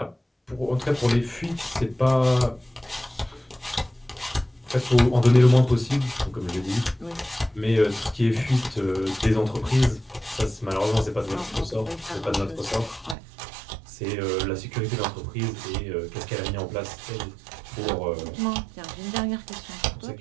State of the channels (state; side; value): drops out; left; at 13.2 s